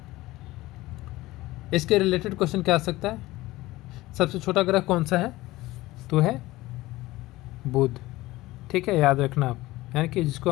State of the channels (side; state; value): right; quieter; 18.4 dB